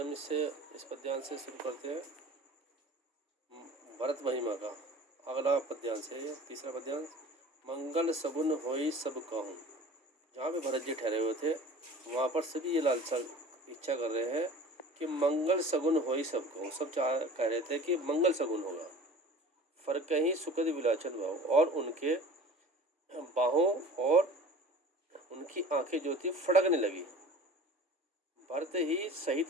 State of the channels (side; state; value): both; normal; correlation 0.42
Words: इस पद्यांश से शुरू करते हैं भरत महिमा का। अगला पद्यांश है ये तीसरा पद्यांश। मंगल सगुन होई सब कहूँ। जहाँ पे भरत जी ठहरे हुए थे वहाँ पर सभी ये लालसा इच्छा कर रहे हैं कि मंगल सगुन होई सब कहूँ। सब कह रहे थे कि मंगल सगुन होगा। फर्क ही सुखद विलाचन भाव, और उनके बाहों और उनकी आंखें जो थी फड़कने लगी। भरत ही